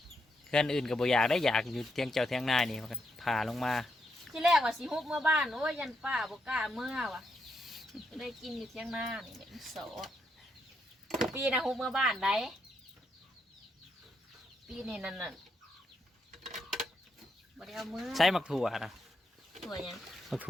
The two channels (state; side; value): normal; both; correlation 0.81